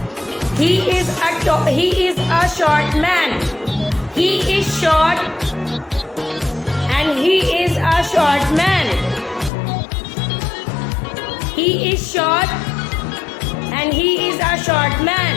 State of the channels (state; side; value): drops out; right; at 9.5 s